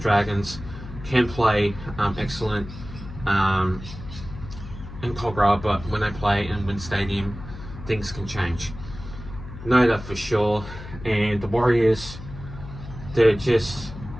can play excellent in Cogra, but when they play in Wynn Stadium, things can change. Know that for sure. And the Warriors, they're just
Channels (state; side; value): noise; left; hum, 13 dB below the sound